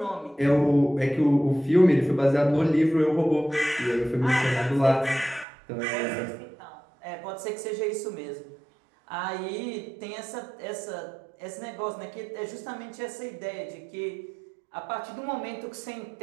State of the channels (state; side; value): drops out; left; at 5.5 s